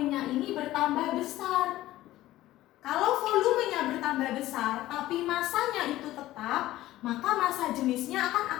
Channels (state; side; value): quieter; right; 15.6 dB